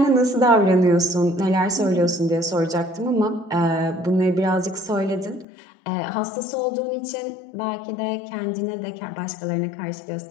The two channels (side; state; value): right; drops out; at 5.5 s